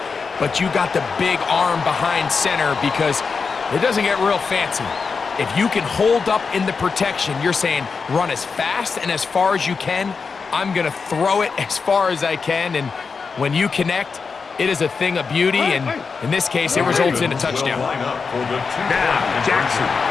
but you got the big arm behind center, because it doesn't get real fancy. If you can hold up in the protection, you're saying run as fast and as far as you can. I'm going to throw it as far as I can, and when you connect, it is a thing of beauty, and in this case, it results in a touchdown. Now, Jackson.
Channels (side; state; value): right; quieter; 5.1 dB